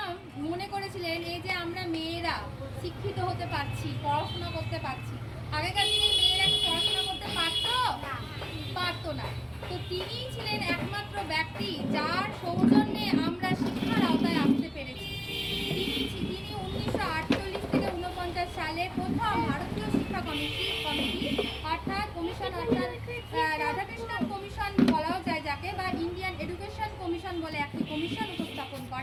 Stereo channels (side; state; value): both; identical; correlation 1.00